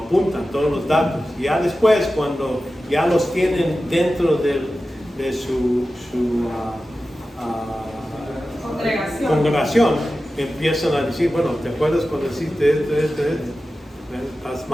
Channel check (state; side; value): normal; both; correlation 0.94